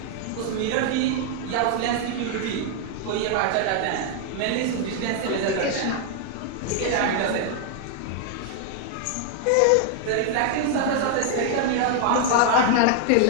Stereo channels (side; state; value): both; different; correlation 0.00